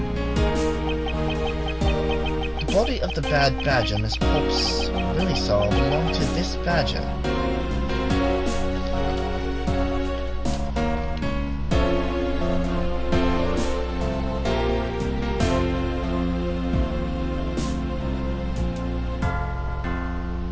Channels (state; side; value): identical; both; correlation 1.00